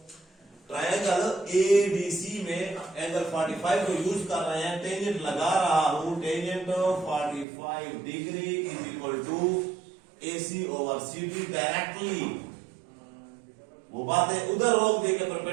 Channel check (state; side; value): drops out; left; at 7.5 s